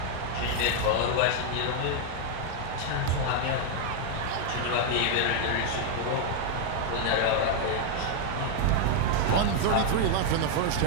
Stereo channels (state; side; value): different; both; correlation 0.00